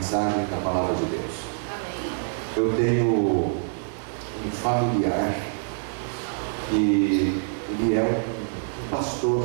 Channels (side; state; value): left; silent; digital silence